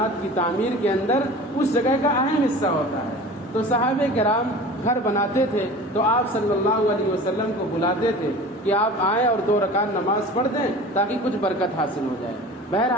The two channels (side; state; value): both; normal; correlation 0.39